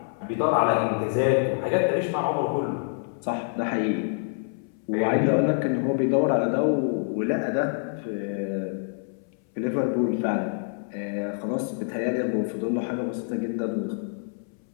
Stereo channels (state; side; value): silent; right; 61 dB below the other